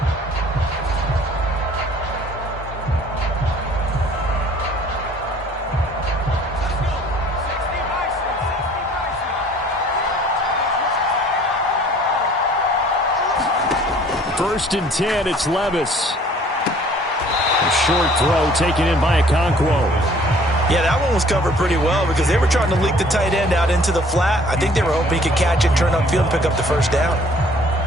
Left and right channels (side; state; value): both; normal; correlation 0.55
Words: First and 10, it's Levis. A short throw taken in by Okonkwo. Yeah, that one was covered pretty well because they were trying to leak the tight end out into the flat. I think they were hoping he could catch it, turn upfield, and pick up the first down.